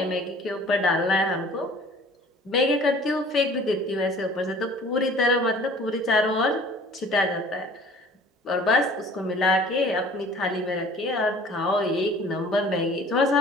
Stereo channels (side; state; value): both; normal; correlation 0.49